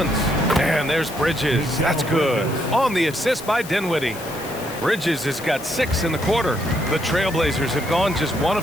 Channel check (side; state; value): left; noise; hiss, 15 dB below the sound